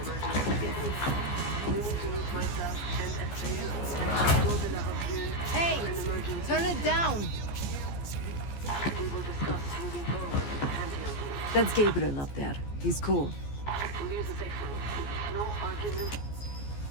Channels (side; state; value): right; late; 14 ms